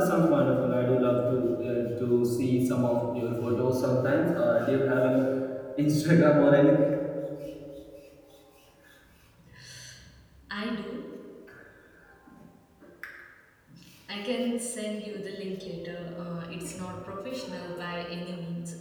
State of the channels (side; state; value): both; identical; correlation 1.00